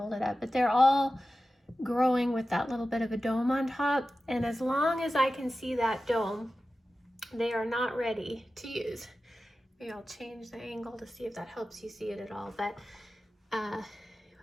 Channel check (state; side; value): normal; both; correlation 0.94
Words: it up, but they're all growing with that little bit of a dome on top, and as long as I can see that dome, they are not ready to use. Maybe I'll change the angle to see if that helps you see it at all, but